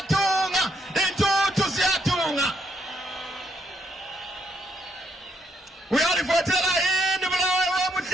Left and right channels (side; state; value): both; normal; correlation 0.74